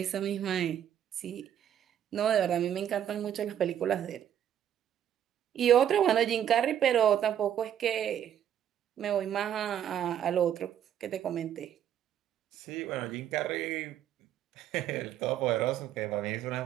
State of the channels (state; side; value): quieter; left; 10.1 dB